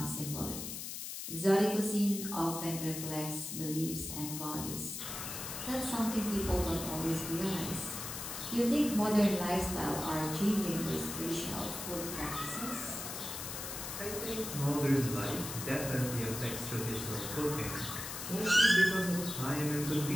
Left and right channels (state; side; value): noise; left; hiss, 6 dB below the sound